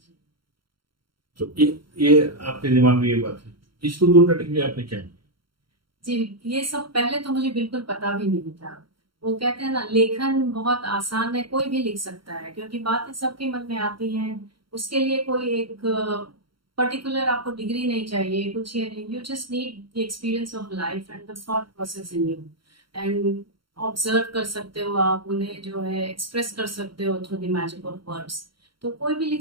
तो ये आपके दिमाग में ये बात है, इसको दूर करने के लिए आपने क्या किया? जी, ये सब पहले तो मुझे बिल्कुल पता भी नहीं था। वो कहते हैं ना, लेखन बहुत आसान है, कोई भी लिख सकता है, क्योंकि बातें सबके मन में आती हैं। उसके लिए कोई एक पर्टिकुलर आपको डिग्री नहीं चाहिए, कुछ ये नहीं। You just need the experience of life and the thought process in you, and observe कर सकते हो आप उन्हें, जो है एक्सप्रेस कर सकते हो through the magic of words. तो कोई भी लिख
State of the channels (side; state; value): left; late; 0.73 ms